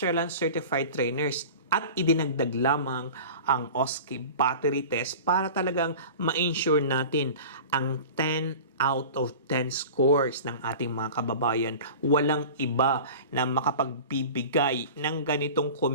Certified Trainers. At idinagdag lamang ang OSCE battery test para talagang ma-ensure natin ang 10 out of 10 scores ng ating mga kababayan. Walang iba na makapagbibigay ng ganitong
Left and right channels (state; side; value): inverted; both; correlation -0.37